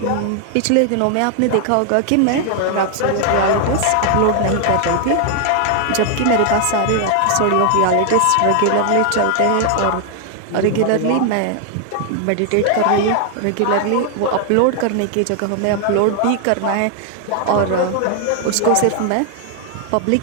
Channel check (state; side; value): different; both; correlation 0.00